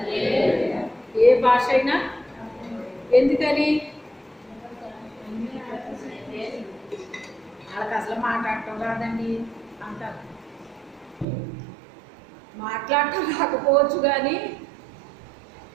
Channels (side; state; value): left; drops out; at 11.2 s